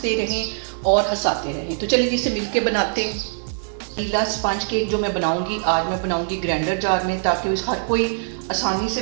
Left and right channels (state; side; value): silent; left; digital silence